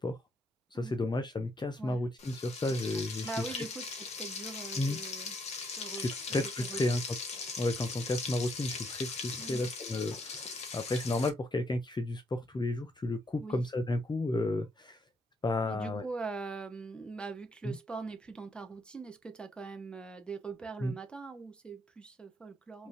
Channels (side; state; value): both; normal; correlation 0.74